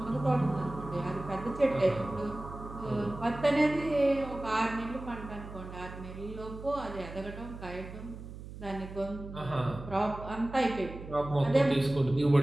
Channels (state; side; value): noise; right; hum, 12 dB below the sound